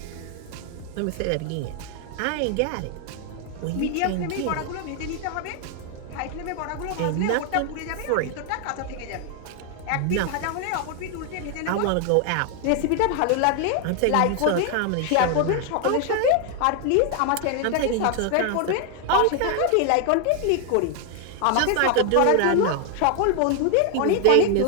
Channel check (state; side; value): different; both; correlation 0.00